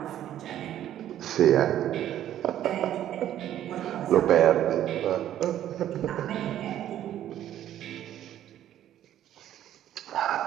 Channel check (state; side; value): quieter; left; 11.7 dB